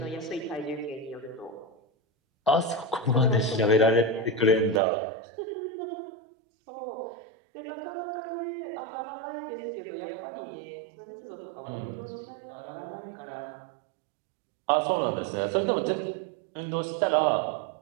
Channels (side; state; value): left; drops out; at 4.8 s